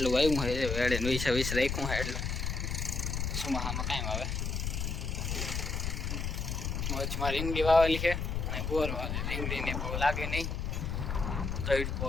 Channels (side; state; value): left; noise; rumble, 2 dB below the sound